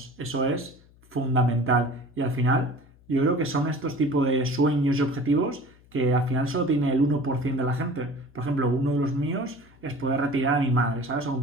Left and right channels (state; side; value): noise; left; hum, 27 dB below the sound